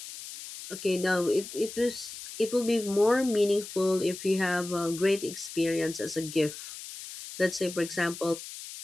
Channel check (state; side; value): noise; left; hiss, 12 dB below the sound